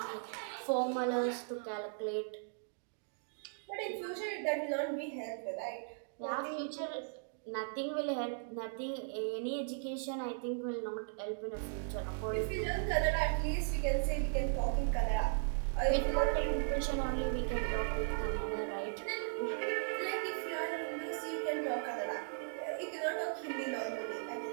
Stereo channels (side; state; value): left; silent; digital silence